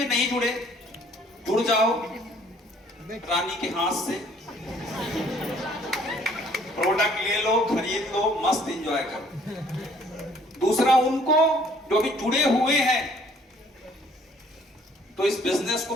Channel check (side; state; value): both; normal; correlation 0.59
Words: नहीं जुड़े, जुड़ जाओ रानी के हाथ से, प्रोडक्ट ले लो, खरीद लो, मस्त एंजॉय करो। दूसरा उनको जो भी जुड़े हुए हैं तो इस बिजनेस को